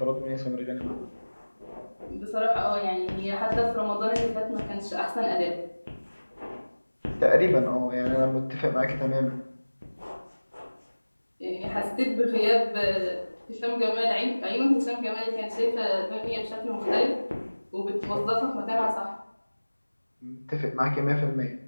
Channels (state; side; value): inverted; both; correlation -1.00